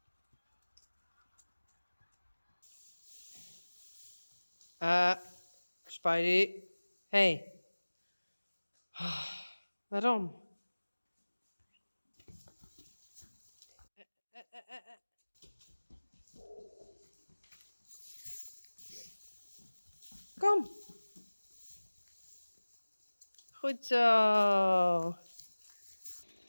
Spidey. Hey. Waarom? Kom. Goed zo.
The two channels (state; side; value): inverted; both; correlation -1.00